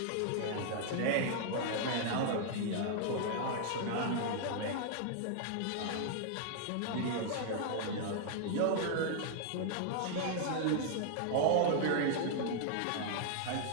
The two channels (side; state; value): both; different; correlation -0.01